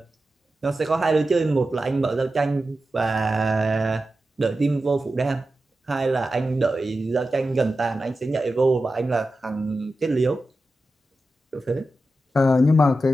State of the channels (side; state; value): both; normal; correlation 0.92